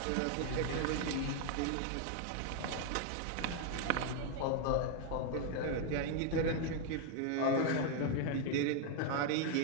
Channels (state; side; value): different; both; correlation 0.00